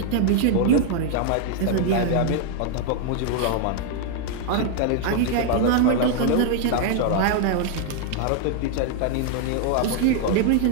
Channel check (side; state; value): both; different; correlation 0.00